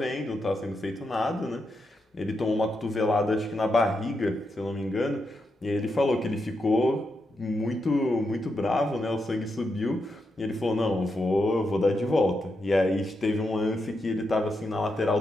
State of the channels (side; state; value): both; normal; correlation 0.84